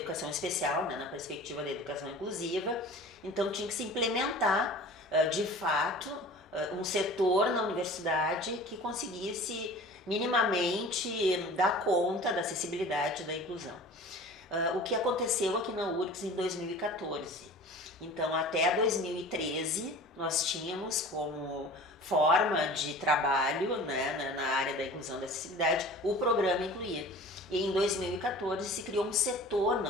especial, né? Na perspectiva da educação inclusiva, então tinha que se implementar, de fato, um setor na universidade que conseguisse minimamente dar conta da acessibilidade e da inclusão. O que aconteceu aqui na URGS em 2014. Então, até 2013, nós tínhamos como forma de trabalho, né, na área da inclusão e da acessibilidade o programa Incluir. E em 2014 se criou um setor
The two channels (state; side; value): normal; both; correlation 0.41